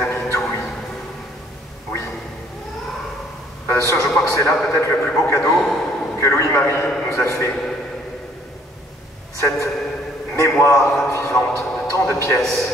tui. Oui. Bien sûr, je crois que c'est là peut-être le plus beau cadeau que Louis-Marie nous a fait. Cette mémoire vivante de tant de pièces.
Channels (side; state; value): both; normal; correlation 0.61